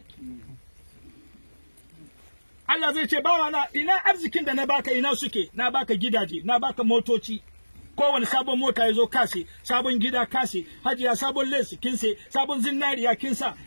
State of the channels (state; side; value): inverted; both; correlation -1.00